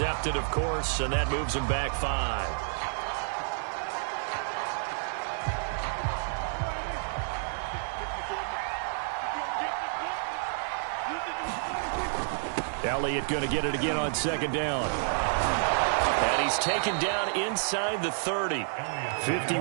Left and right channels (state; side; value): silent; left; 58 dB below the other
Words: of course, and that moves him back 5. Elliott going to get it again on second down. And he's taken down inside the 30.